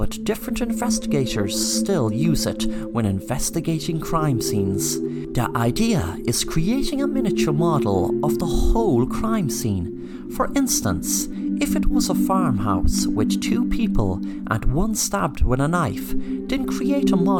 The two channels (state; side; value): identical; both; correlation 1.00